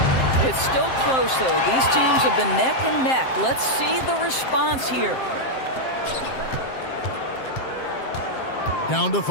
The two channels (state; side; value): late; right; 7.6 ms